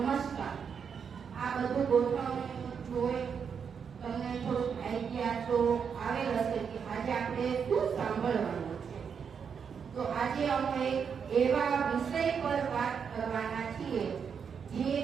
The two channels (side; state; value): left; quieter; 6.7 dB